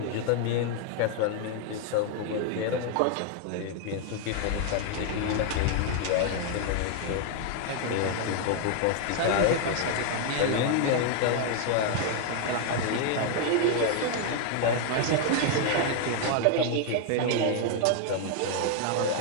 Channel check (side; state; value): both; different; correlation 0.00